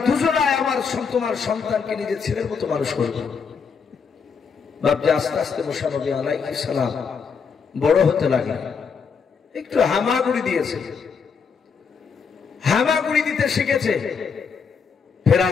দুজনাই আমার তোমার সন্তানকে নিজের ছেলের মতো মানুষ করবো। ভাবছি আস্তে আস্তে মুসা নবী আলাইহিস সালাম বড় হতে লাগলেন, একটু হামাগুড়ি দিয়েছে, হামাগুড়ি দিতে শিখেছে।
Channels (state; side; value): quieter; right; 5.9 dB